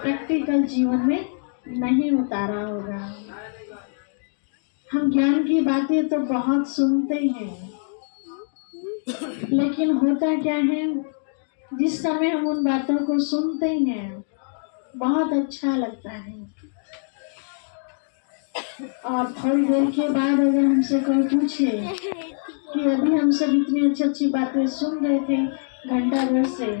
जीवन में नहीं उतारा होगा। हम ज्ञान की बातें तो बहुत सुनते हैं, लेकिन होता क्या है, जिस समय हम उन बातों को सुनते हैं बहुत अच्छा लगता है, और थोड़ी देर के बाद अगर हमसे कोई पूछे कि अभी हम सब इतनी अच्छी अच्छी बातें सुन रहे थे घंटा भर से,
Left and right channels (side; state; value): right; silent; digital silence